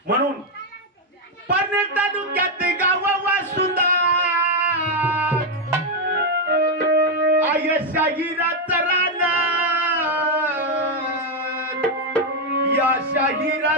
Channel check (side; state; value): both; normal; correlation 0.03